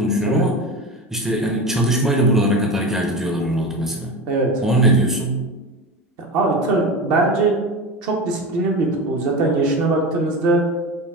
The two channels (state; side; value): normal; both; correlation 0.26